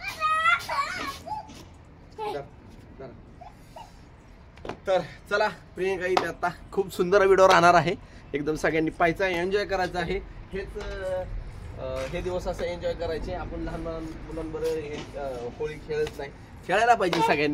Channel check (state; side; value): identical; both; correlation 1.00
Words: तर चला प्रियंका इथे आता खूप सुंदर व्हिडिओ राहणार आहे. एकदम सगळ्यांनी पाहायचा, एन्जॉय करायचं आहे. हे दिवस असं एन्जॉय करायचे. आपण लहान मुलांबरोबर हे होळी खेळत नाही. खेळायला पाहिजे